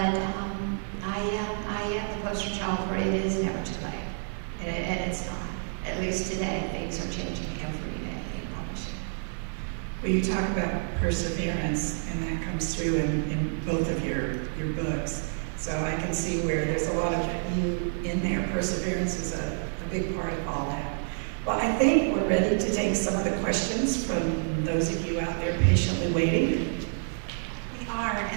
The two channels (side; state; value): left; silent; 59 dB below the other